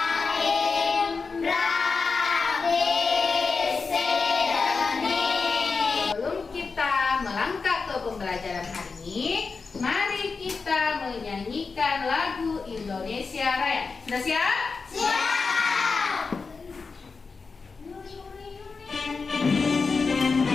Pembelajaran hari ini, mari kita menyanyikan lagu Indonesia Raya. Sudah siap? Siap.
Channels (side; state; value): right; quieter; 4.6 dB